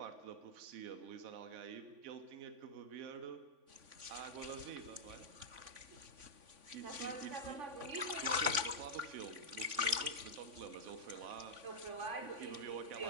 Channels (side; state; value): left; late; 3.5 ms